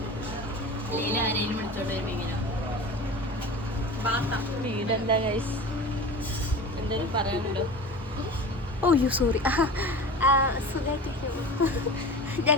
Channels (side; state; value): both; normal; correlation 0.34